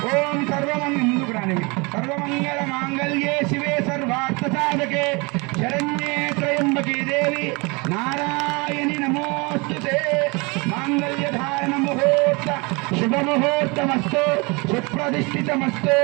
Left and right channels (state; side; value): quieter; left; 27.9 dB